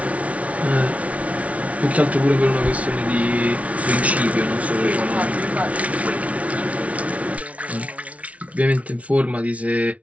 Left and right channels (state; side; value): late; left; 0.066 ms